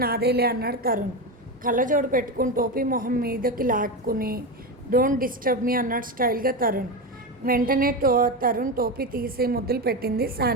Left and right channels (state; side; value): normal; both; correlation 0.17